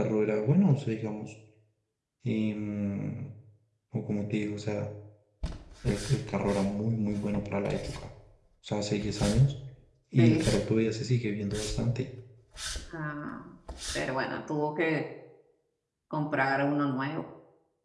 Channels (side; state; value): both; identical; correlation 1.00